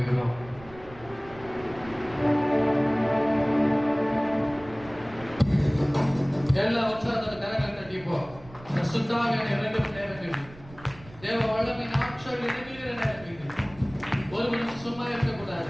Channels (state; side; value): noise; right; rumble, 20 dB below the sound